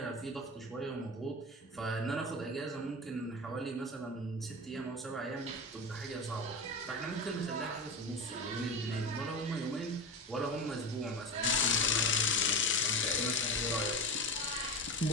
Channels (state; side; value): normal; both; correlation 0.24